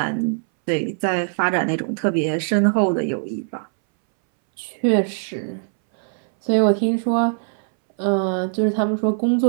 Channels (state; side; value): silent; left; 63 dB below the other